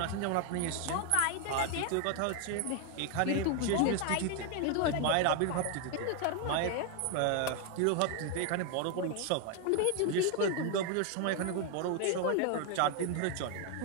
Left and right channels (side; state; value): both; different; correlation 0.01